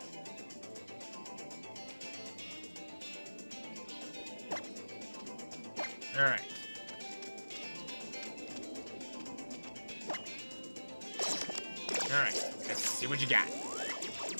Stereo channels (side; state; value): both; inverted; correlation -1.00